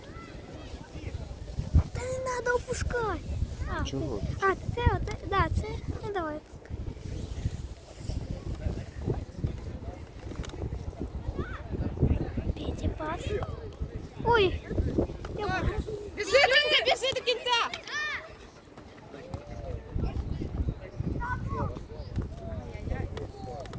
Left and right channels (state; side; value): identical; both; correlation 1.00